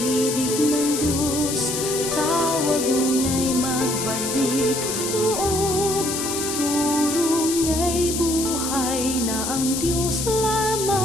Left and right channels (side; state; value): left; noise; hiss, 3 dB below the sound